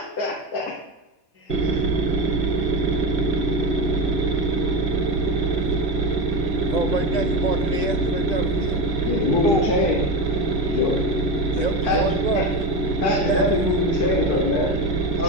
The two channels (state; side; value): late; right; 2.0 ms